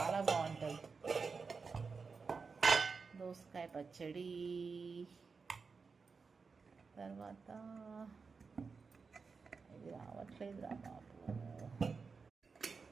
బాగుంటుంది. దోసకాయ పచ్చడి, తర్వాత ఇది రావట్లేదు రా బాబు,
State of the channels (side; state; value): left; quieter; 4.9 dB